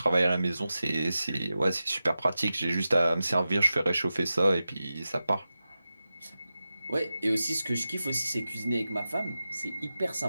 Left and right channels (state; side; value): inverted; both; correlation -0.93